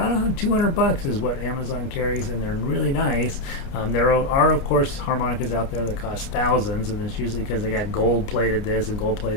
$200 is what Amazon carries, and they're really nice. There are, of course, harmonicas out there that cost thousands, and it's usually because they got gold-plated this and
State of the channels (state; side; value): late; right; 29 ms